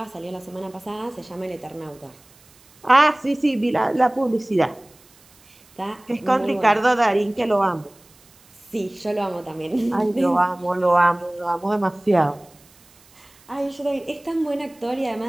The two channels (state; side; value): noise; right; hiss, 28 dB below the sound